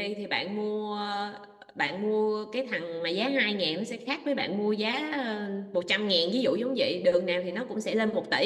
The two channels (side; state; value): both; identical; correlation 1.00